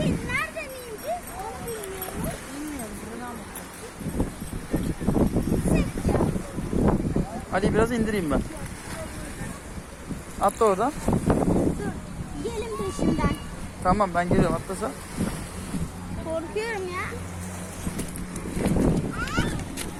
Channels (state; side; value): identical; both; correlation 1.00